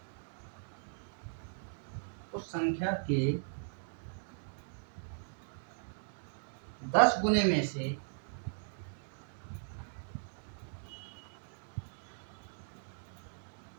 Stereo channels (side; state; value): left; silent; digital silence